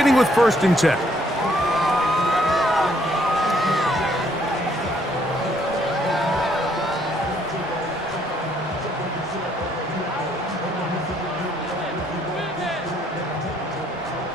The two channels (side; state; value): both; normal; correlation 0.68